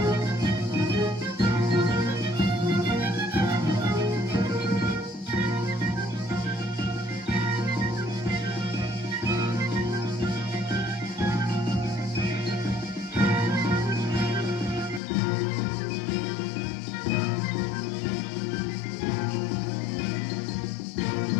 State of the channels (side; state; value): right; drops out; at 15.0 s